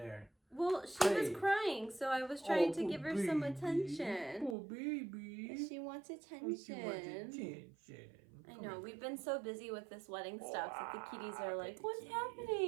Well, she was crying, so I was trying to give her some attention. Oh, baby. She wants attention. I know. We've been so busy with this wedding stuff that the kitties are like, what's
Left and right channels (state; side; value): drops out; left; at 4.5 s